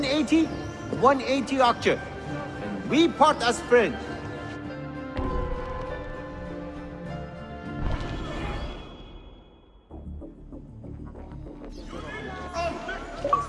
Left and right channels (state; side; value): identical; both; correlation 1.00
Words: 180 aksha. And we part as friends.